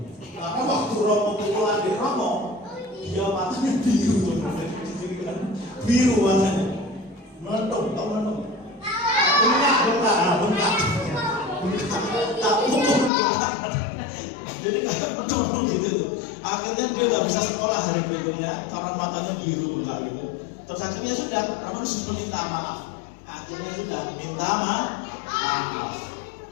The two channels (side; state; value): right; drops out; at 13.1 s